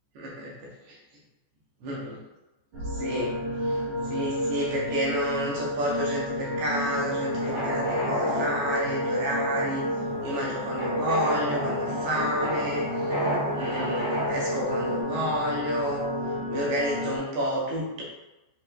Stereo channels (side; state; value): left; late; 14 ms